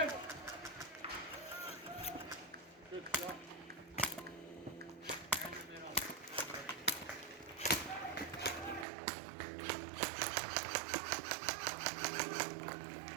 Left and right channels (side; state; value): left; drops out; at 8.8 s